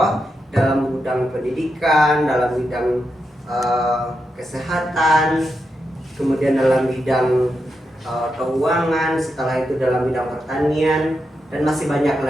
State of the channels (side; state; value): both; normal; correlation 0.86